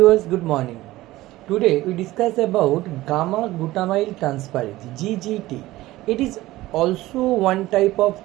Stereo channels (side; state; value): left; quieter; 17.2 dB